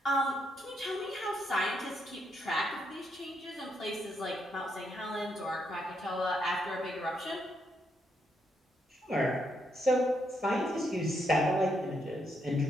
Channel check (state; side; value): normal; both; correlation 0.78